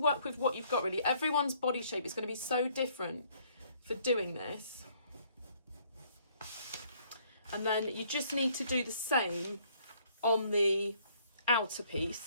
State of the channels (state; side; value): inverted; both; correlation -0.63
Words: with what you've got really. Everyone's body shape is going to be so different for doing this. And then you just need to do the same on the outer